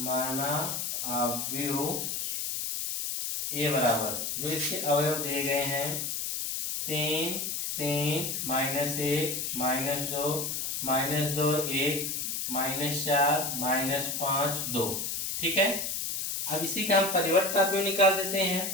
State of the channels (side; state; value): left; noise; hiss, 2 dB below the sound